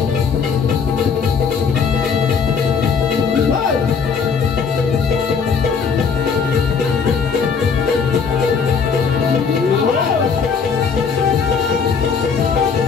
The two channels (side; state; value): right; quieter; 5.9 dB